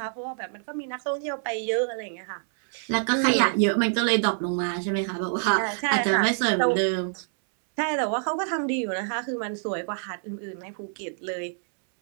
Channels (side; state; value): left; silent; 61 dB below the other